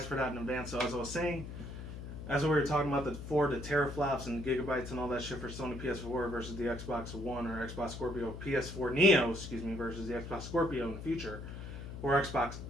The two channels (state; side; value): noise; left; hum, 9 dB below the sound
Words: for that in advance. So as I was saying, as we were talking about the teraflops and gigabytes and all that shit for Sony PS4 versus the Xbox One or Xbox Scorpio PS4 Neo, versus the Xbox Scorpio in the future, or Xbox